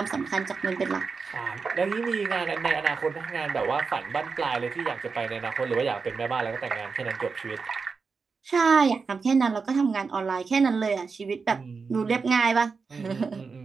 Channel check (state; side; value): quieter; left; 4.9 dB